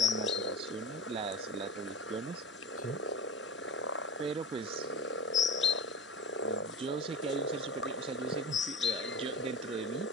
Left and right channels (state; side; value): normal; both; correlation 0.32